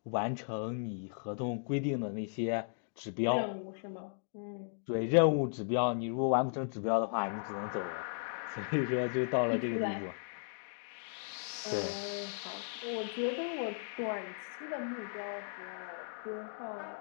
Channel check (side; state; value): right; silent; digital silence